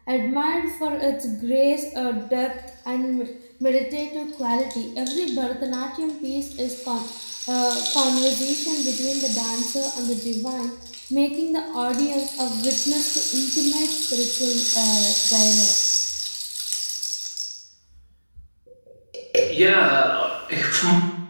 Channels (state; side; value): inverted; both; correlation -1.00